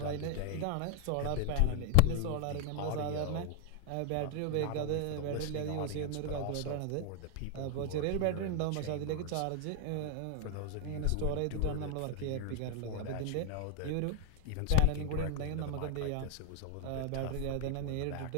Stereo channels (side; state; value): both; different; correlation 0.00